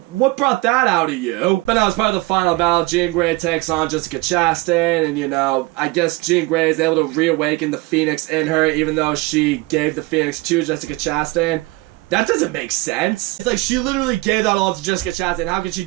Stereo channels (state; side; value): quieter; left; 22.4 dB